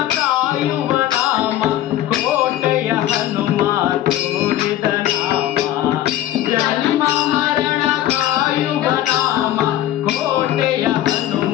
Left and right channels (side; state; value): right; quieter; 13.2 dB